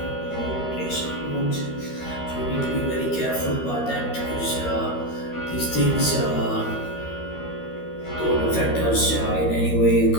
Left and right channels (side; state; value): right; late; 13 ms